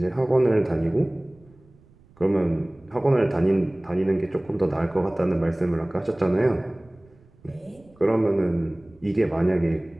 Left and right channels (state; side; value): noise; right; rumble, 29 dB below the sound